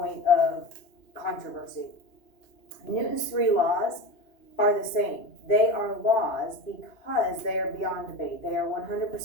of controversy. Newton's 3 laws are the same. They are laws because they are beyond debate. They are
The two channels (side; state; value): right; late; 2.8 ms